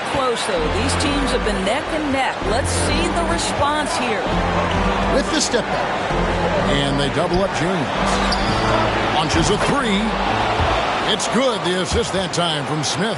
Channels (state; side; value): identical; both; correlation 1.00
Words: close, though. These teams have been neck and neck. Let's see the response here. With the step back. And they double up James. Launches a 3. It's good. The assist that time from